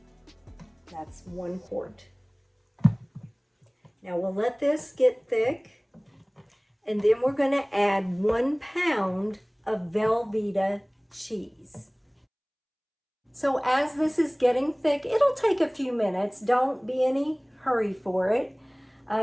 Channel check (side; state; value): both; identical; correlation 1.00